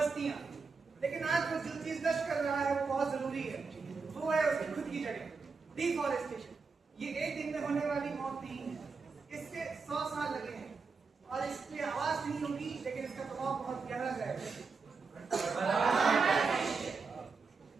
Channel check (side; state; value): left; quieter; 4.7 dB